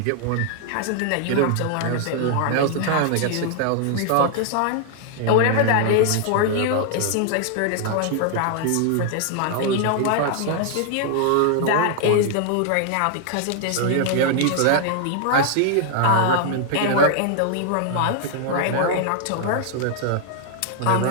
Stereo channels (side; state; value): both; different; correlation 0.00